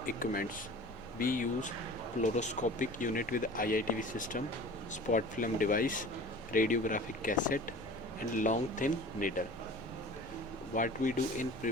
equipments. We use fluoroscopic unit with IITV system, spot film device, radiographic cassette and long thin needle. What we do in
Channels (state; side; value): noise; left; rumble, 20 dB below the sound